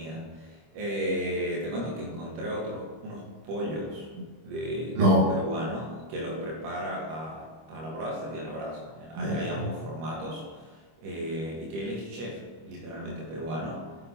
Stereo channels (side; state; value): left; late; 25 ms